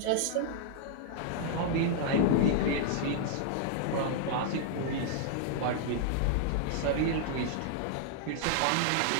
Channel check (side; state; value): both; different; correlation -0.01